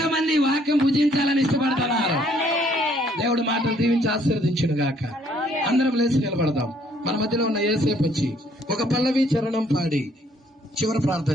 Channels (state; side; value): normal; both; correlation 0.64